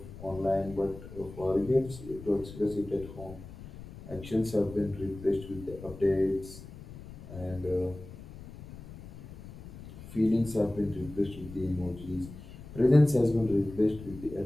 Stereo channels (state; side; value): noise; left; rumble, 15 dB below the sound